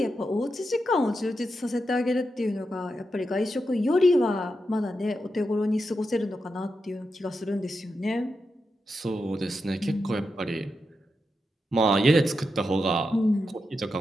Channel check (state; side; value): normal; both; correlation 0.87